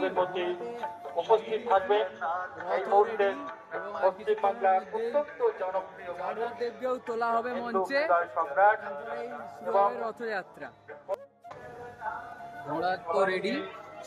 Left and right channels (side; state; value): both; identical; correlation 1.00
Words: মধ্যে উপস্থিত থাকবেন এই মুহূর্তে পশ্চিম বাংলার অত্যন্ত জনপ্রিয় দেবকেও তোলা হবে মঞ্চে। সম্রাট এবং রথযাত্রা ঘোড়া তো রেডি,